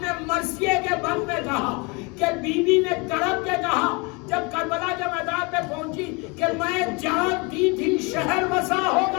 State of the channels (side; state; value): right; quieter; 29.1 dB